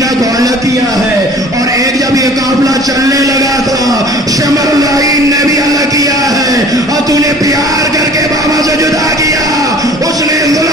کو الگ کیا ہے, اور ایک جب یہ قافلہ چلنے لگا تھا شمر العین نے بھی الگ کیا ہے, اور تو نے پیار کر کے بابا سے جدا کیا, اس نے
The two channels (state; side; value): normal; both; correlation 0.48